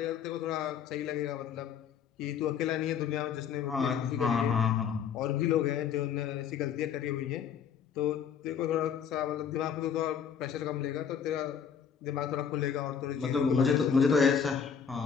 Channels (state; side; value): quieter; right; 7.4 dB